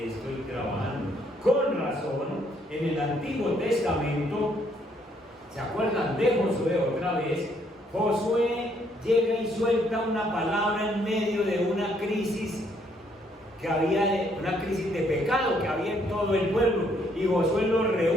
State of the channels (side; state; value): both; normal; correlation 0.69